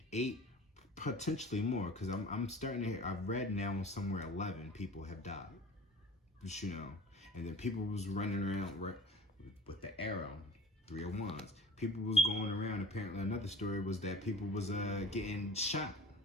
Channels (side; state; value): both; normal; correlation 0.43